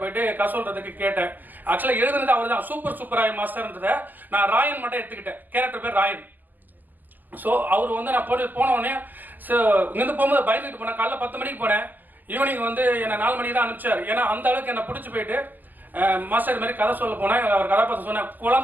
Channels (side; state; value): left; late; 0.086 ms